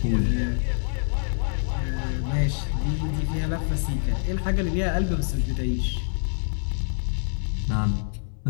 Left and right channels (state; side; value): silent; right; 61 dB below the other